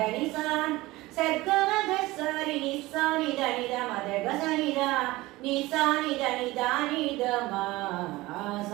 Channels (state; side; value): quieter; left; 19.6 dB